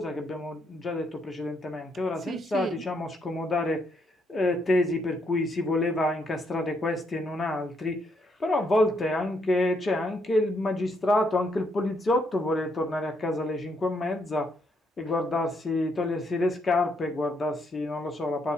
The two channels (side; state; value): both; normal; correlation 0.75